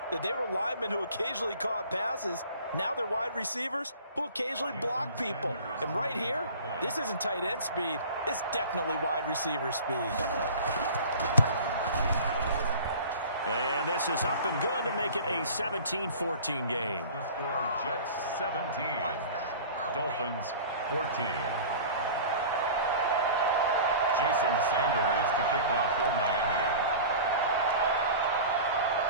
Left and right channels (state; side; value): inverted; both; correlation -0.40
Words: that they were linemen who occasionally caught passes. Now they're wide receivers who occasionally block people. And right here, this isn't tight end speed. It's definitely wide receiver speed. And this is up and good to make it a 17-14 game. The score, Jets 17, Dolphins 14. Jason Sanders to kick off for Miami.